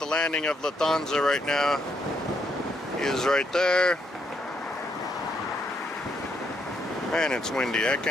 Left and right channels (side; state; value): both; normal; correlation 0.75